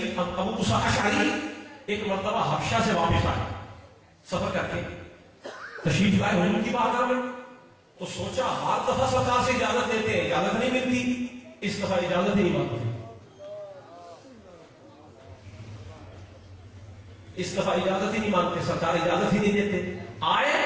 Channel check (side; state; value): both; identical; correlation 1.00